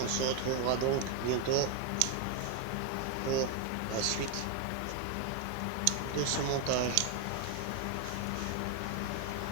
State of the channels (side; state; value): both; different; correlation 0.01